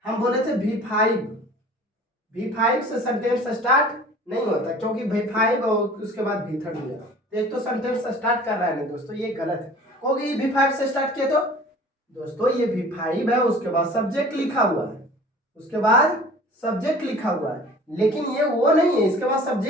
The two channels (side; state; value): both; normal; correlation 0.45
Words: हम बोले थे V5 से सेंटेंस स्टार्ट नहीं होता, क्योंकि V5 और उसके बाद भीथड़ दिया, एक तो सेंटेंस स्टार्ट कर रहा है नहीं दोस्तों, ये गलत है। क्योंकि V5 से स्टार्ट किया तो दोस्तों ये V5 है, उसके बाद सब्जेक्ट लिखा हुआ है, उसके बाद सब्जेक्ट लिखा हुआ है, लेकिन ये वो नहीं है, इसके बाद